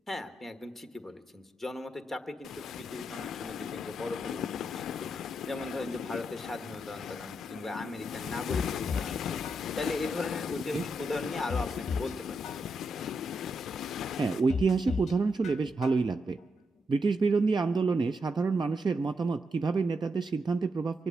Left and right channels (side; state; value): both; normal; correlation 0.83